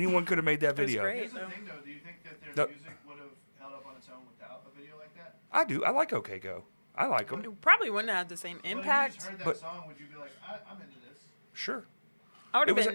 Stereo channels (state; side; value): inverted; both; correlation -1.00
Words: could have made that It was video. great. Here's the though. thing though, do you think that The- their music would have held up on its own without a video like that? I do. I like OK Go. I like them. It probably wouldn't have had the same But if you impact. just heard that But- song, would you be like, I'm into this? Sure. I would it have was a-